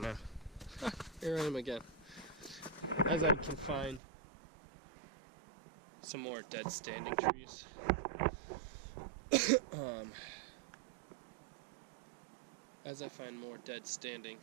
now. Here I am again. As I can find some more dead standing trees. As I find more dead standing,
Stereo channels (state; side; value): drops out; left; at 4.0 s